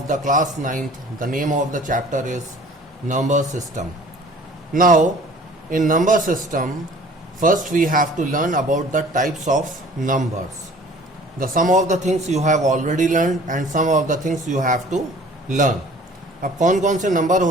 the class 9th. The name of the chapter is number system. Now in number system, first we have to learn about the types of numbers. Some of the things you have already learned and some of the things you have to learn. अब कौन कौन से नंबर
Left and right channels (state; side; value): normal; both; correlation 0.49